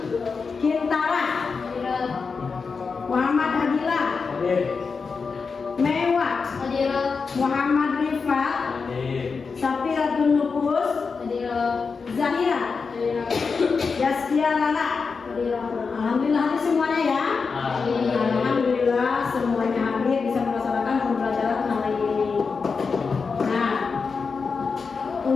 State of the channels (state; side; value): quieter; right; 5.0 dB